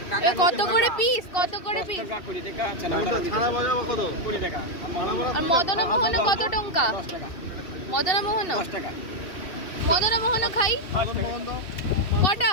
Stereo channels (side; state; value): right; late; 2.7 ms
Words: কত করে পিস, কত করে পিস? আর মদন মোহন কত টঙ্কা? মদন মোহন, মদন মোহন খাই। কটা